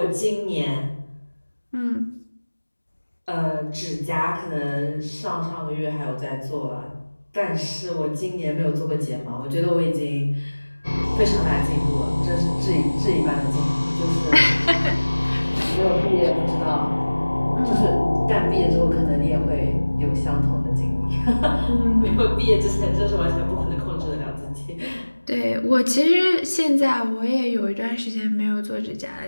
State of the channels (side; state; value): both; inverted; correlation -1.00